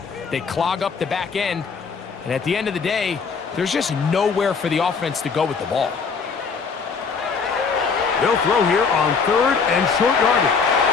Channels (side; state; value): right; quieter; 5.4 dB